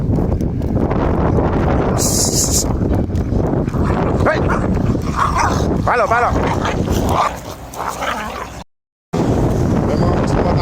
Hey! Palo, palo! May mga boss na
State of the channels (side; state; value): both; identical; correlation 1.00